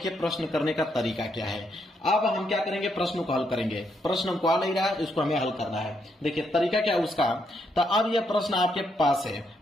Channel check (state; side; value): normal; both; correlation 0.77